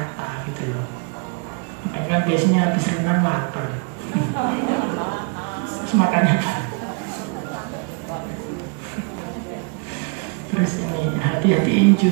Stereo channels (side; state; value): left; quieter; 36.9 dB